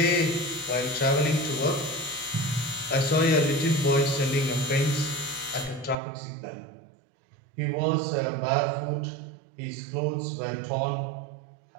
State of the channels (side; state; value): left; drops out; at 6.0 s